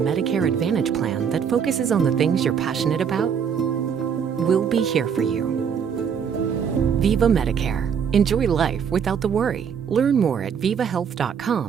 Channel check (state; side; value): quieter; left; 7.3 dB